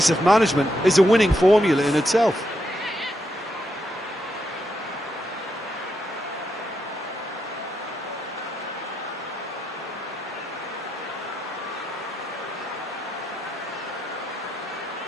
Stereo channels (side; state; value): both; normal; correlation 0.81